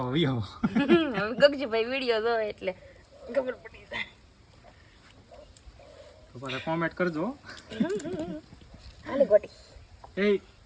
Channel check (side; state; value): both; identical; correlation 1.00